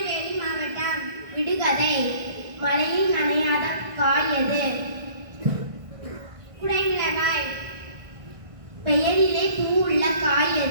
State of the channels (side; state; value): left; late; 1.6 ms